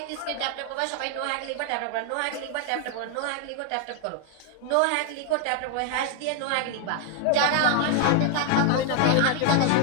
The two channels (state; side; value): different; both; correlation 0.00